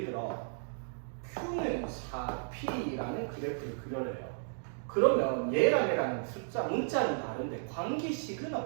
들어 Q는 4P라는 그래프를 그려래요. 그러면 얘랑 얘랑 숫자, 문자는 다른데 관계식은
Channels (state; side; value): silent; left; digital silence